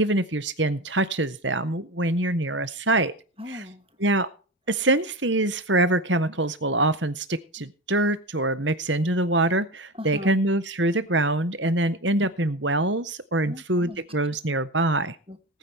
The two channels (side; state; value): both; normal; correlation 0.23